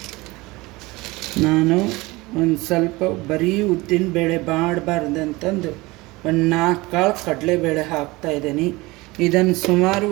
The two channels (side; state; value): left; quieter; 22.0 dB